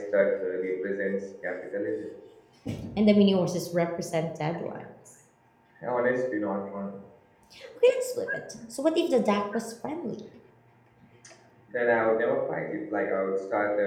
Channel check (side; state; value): both; identical; correlation 1.00